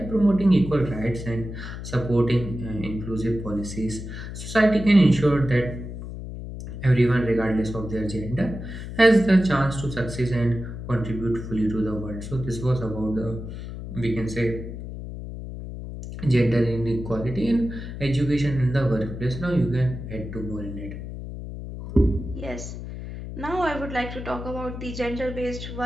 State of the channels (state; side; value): noise; left; hum, 9 dB below the sound